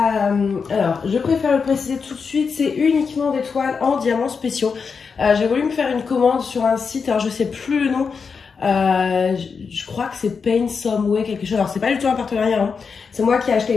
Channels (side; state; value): right; quieter; 5.5 dB